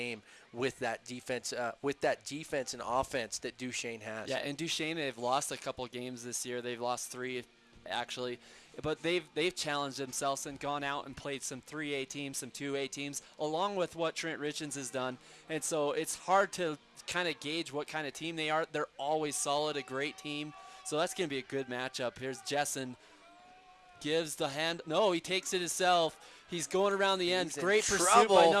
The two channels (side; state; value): both; identical; correlation 1.00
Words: with that defense and offense that Duchesne has. Yeah, and Duchesne, they've lost a couple games this year. They've lost 3, actually. But they've challenged themselves and gone out and played some 3A teams, some 2A teams, along with what Trent Richens has done. And so it's hard to kind of gauge what kind of team they are. They're always solid, a great team. So that's going to be a good matchup. Here's Jessen. Gives the hand. No, he takes it himself. He's going around the end. Great pursuit by